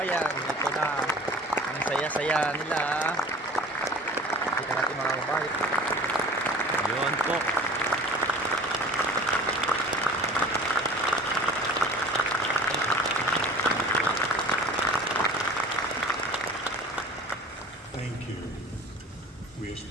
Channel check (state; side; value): normal; both; correlation 0.43